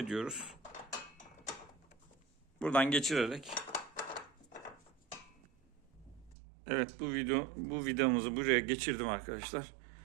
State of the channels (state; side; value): drops out; left; at 6.4 s